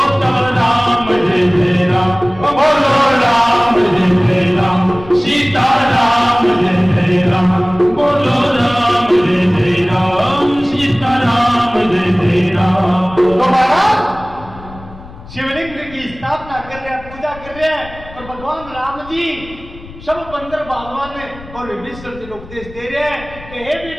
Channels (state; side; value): noise; left; rumble, 18 dB below the sound